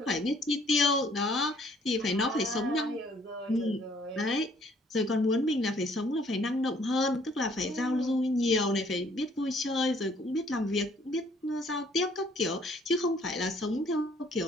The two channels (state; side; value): normal; both; correlation 0.61